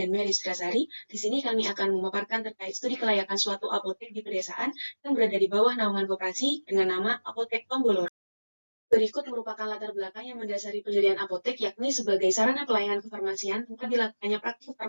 Mary Sudrasari. Di sini kami akan memaparkan terkait studi kelayakan suatu apotek di pedesaan yang berada di bawah naungan koperasi dengan nama Apotek Tomboloro. Berikut merupakan latar belakang yang mendasari pendirian apotek, yakni sebagai sarana pelayanan kefarmasian tempat dilakukannya praktik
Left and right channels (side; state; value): both; inverted; correlation -1.00